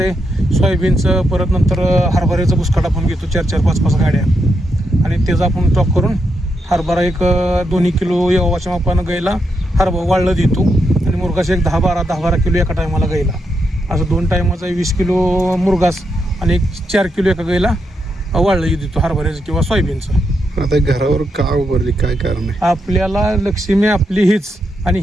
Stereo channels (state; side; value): normal; both; correlation 0.82